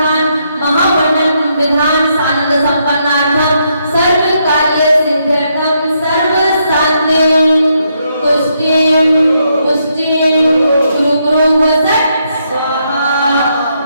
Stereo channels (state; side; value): inverted; both; correlation -0.77